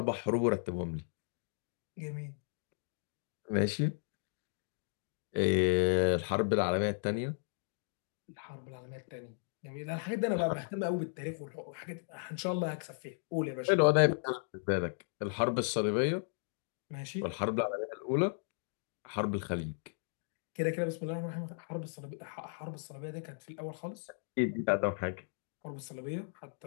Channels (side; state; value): right; silent; digital silence